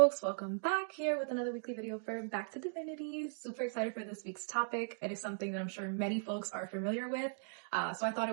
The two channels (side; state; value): left; silent; digital silence